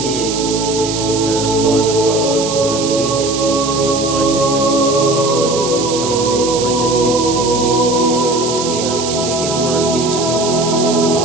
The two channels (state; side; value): noise; right; hiss, 6 dB below the sound